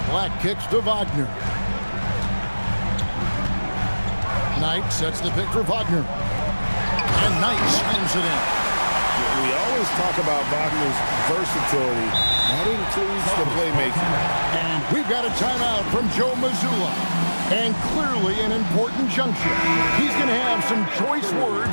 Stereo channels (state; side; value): inverted; both; correlation -1.00